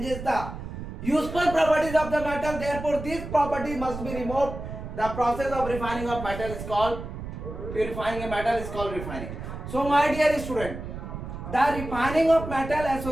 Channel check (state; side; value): noise; right; rumble, 9 dB below the sound